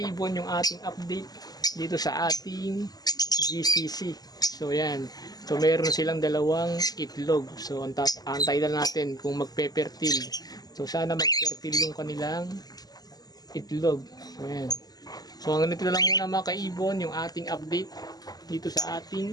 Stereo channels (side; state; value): right; late; 0.19 ms